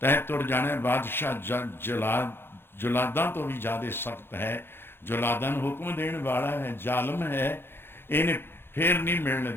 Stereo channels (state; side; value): late; right; 0.11 ms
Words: तय तुर जाने। बादशाह जुलादा तो भी ज़्यादा सख्त है, जुलादा नूं हुक्म देने वाला है, जालम है, इन्हें फिर नहीं मिलने